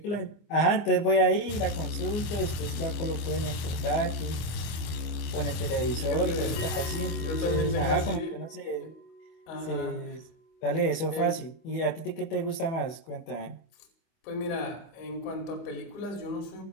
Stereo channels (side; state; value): right; late; 25 ms